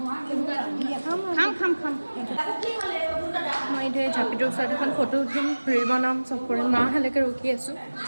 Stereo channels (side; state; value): both; inverted; correlation -1.00